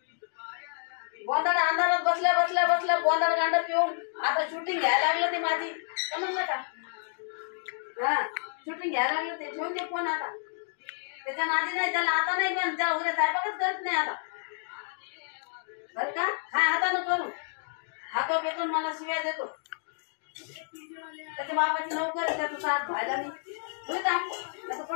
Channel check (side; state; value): right; silent; digital silence